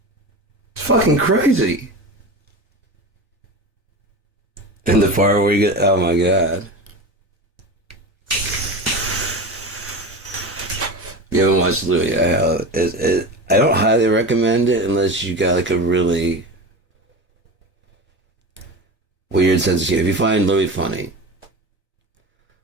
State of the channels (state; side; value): normal; both; correlation 0.27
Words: It's fucking crazy. And the part where you get, oh my god. You haven't watched Louis. I don't highly recommend it unless you got like a really weird sense of humor. If you find Louis funny,